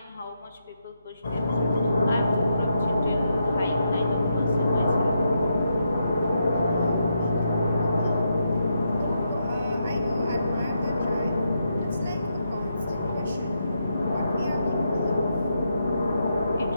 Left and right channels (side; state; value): both; inverted; correlation -0.82